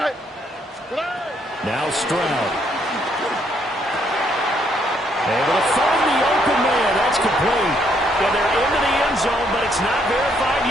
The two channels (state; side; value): normal; both; correlation 0.71